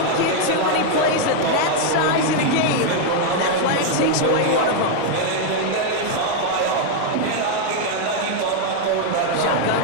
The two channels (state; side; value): different; both; correlation 0.01